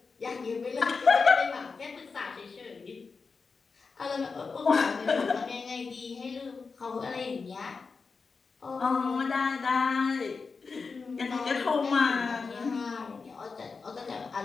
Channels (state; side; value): quieter; right; 4.7 dB